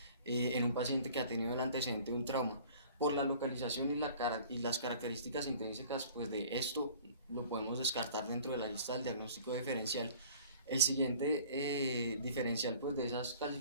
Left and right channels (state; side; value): inverted; both; correlation -0.48